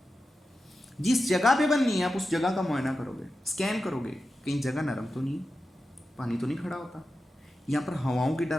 जिस जगह पे बननी है आप उस जगह का मुआयना करोगे, स्कैन करोगे, कहीं जगह नरम तो नहीं, पानी तो नहीं खड़ा होता, यहाँ पर हवाओं की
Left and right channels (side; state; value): both; normal; correlation 0.92